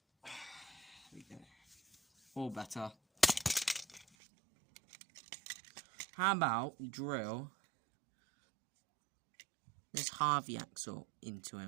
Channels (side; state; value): left; drops out; at 4.0 s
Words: we go. Or better. How about we drill this Harvey axle into